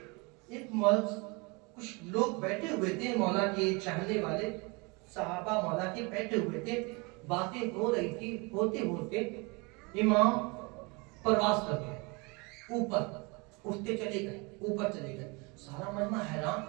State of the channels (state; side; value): quieter; left; 28.6 dB